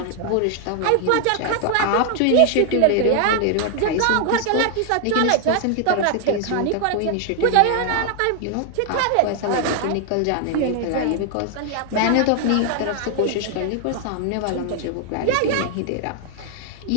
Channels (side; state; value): both; different; correlation 0.00